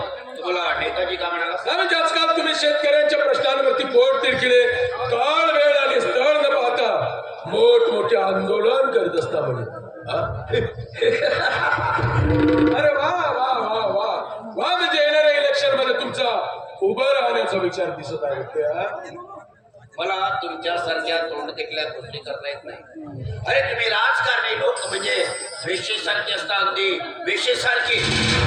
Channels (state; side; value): identical; both; correlation 1.00